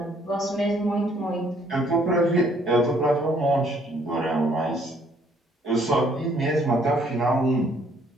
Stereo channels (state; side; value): normal; both; correlation 0.64